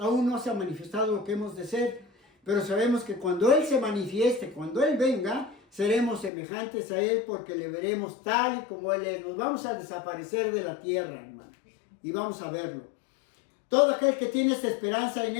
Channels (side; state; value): right; drops out; at 6.3 s